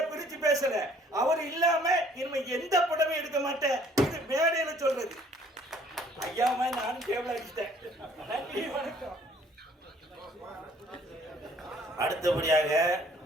பிரிச்சு பேசல. அவர் இல்லாம இனிமே எந்த படமும் எடுக்க மாட்டேன். இது மேடையில சொல்றது. ஐயாமா நானும் டேபிள் அடிச்சிட்டேன். நன்றி, வணக்கம். அடுத்தபடியாக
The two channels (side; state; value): both; normal; correlation 0.58